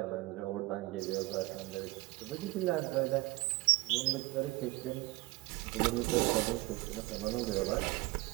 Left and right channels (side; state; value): left; quieter; 21.9 dB